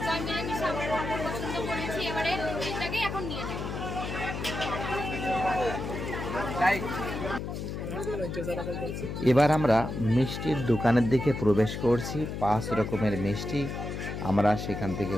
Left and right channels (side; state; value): left; noise; hum, 5 dB below the sound